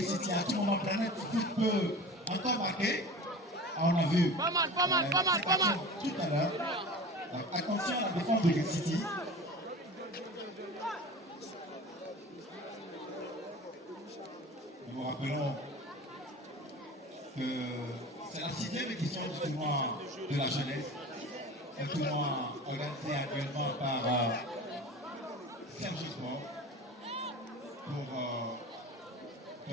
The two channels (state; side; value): normal; both; correlation 0.36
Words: City. À tout moment, Planet Foot peut encore marquer. On a vu pas mal. Tout à l'heure. Attention à la défense de Gate City. Nous vous rappelons que c'est la 6e édition du tournoi de la jeunesse. Un tournoi organisé actuellement par Serge Sport pour